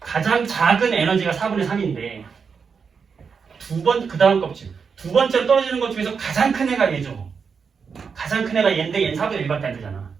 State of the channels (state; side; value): quieter; left; 5.9 dB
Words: 가장 작은 에너지가 4분의 3인데 그 다음 껍질 두 번째로 떨어지는 것 중에서 가장 큰 애가 얘죠. 가장 큰 애가 얘인데 얘는 4분의 1밖에 안 되잖아.